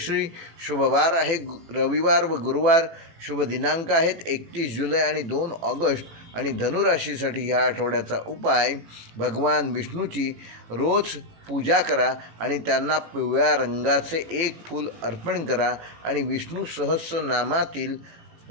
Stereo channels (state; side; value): late; left; 18 ms